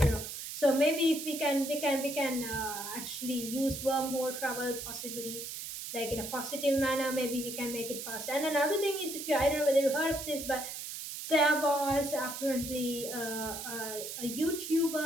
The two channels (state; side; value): noise; right; hiss, 7 dB below the sound